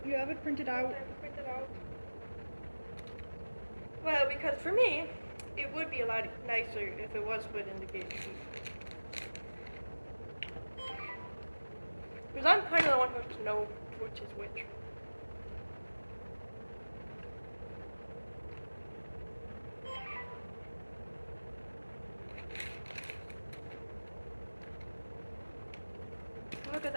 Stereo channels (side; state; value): both; inverted; correlation -1.00